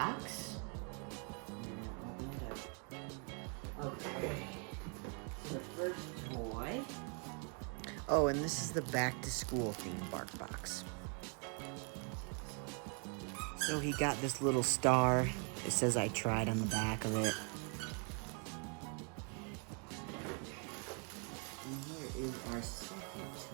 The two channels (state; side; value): quieter; left; 39.0 dB